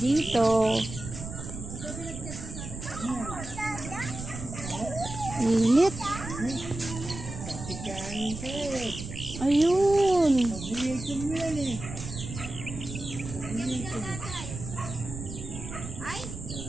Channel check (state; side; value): noise; right; rumble, 9 dB below the sound